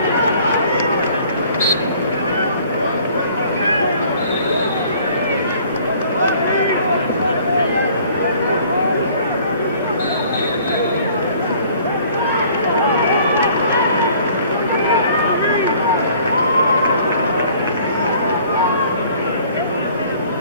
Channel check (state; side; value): inverted; both; correlation -0.54